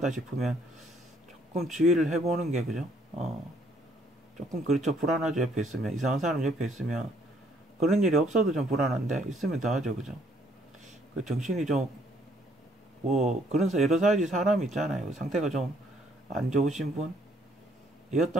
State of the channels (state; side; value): normal; both; correlation 0.66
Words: 싶으면 조금 주의를 해보는 게, 그죠? 조금 그렇죠. 불안하죠. 옆에 있으면. 이상한 사람 옆에 있으면. 그런 일이 없어도 좀 불안한데, 있으면 더 하죠. 그죠? 정신이 좀, 여러 가지 사람이 있잖아요. 상태가 좀 안 좋으신